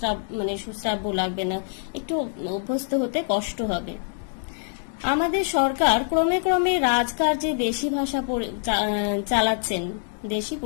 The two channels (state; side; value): silent; right; 62 dB below the other